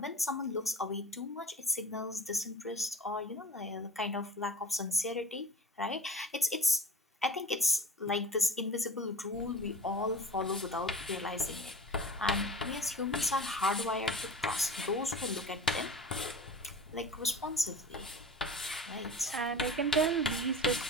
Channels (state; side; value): normal; both; correlation 0.37